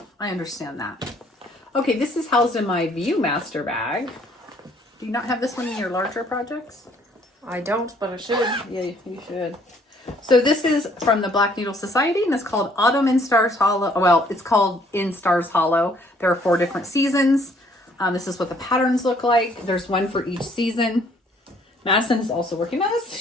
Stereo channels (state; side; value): normal; both; correlation 0.62